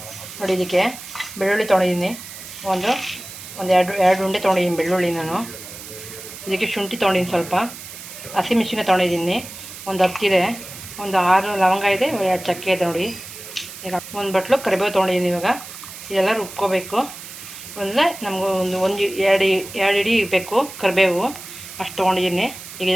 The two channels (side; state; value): right; noise; hiss, 13 dB below the sound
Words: ನೋಡಿ, ಇದಕ್ಕೆ ಬೆಳ್ಳುಳ್ಳಿ ತೊಗೊಂಡಿದ್ದೀನಿ. ಒಂದು ಎರಡು ಉಂಡೆ ತೊಗೊಂಡಿದ್ದೀನಿ ಬೆಳ್ಳುಳ್ಳಿ. ನಾನು ಇದಕ್ಕೆ ಶುಂಠಿ ತೊಗೊಂಡಿದ್ದೀನಿ, ಸ್ವಲ್ಪ ಹಸಿಮೆಣಸಿನ ತೊಗೊಂಡಿದ್ದೀನಿ, ಒಂದು 10 ಇದೆ, ಒಂದು 6 ಲವಂಗ ಇದೆ, 2 ಚಕ್ಕೆ ಇದೆ. ನೋಡಿ, ಈಗ ಒಂದು ಬಟ್ಲು ಕರಿಬೇವು ತೊಗೊಂಡಿದ್ದೀನಿ. ಇವಾಗ ಇದೆಲ್ಲ ರುಬ್ಕೋಬೇಕು. ಅಂದರೆ ನಮಗೂ ಎರಡು ಇಡಿ ಬೇಕು ಕರಿಬೇವು, ಅಷ್ಟು ತೊಗೊಂಡಿದ್ದೀನಿ. ಈಗ